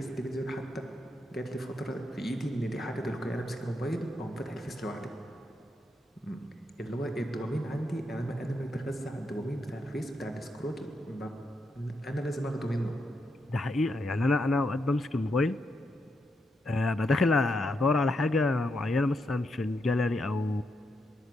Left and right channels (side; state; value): both; normal; correlation 0.82